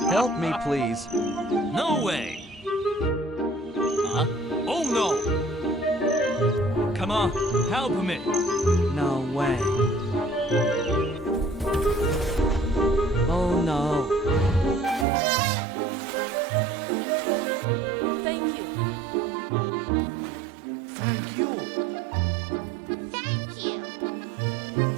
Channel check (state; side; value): drops out; left; at 15.1 s